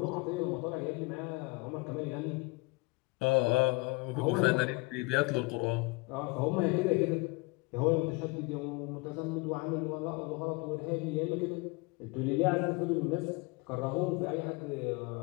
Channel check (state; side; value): quieter; right; 26.5 dB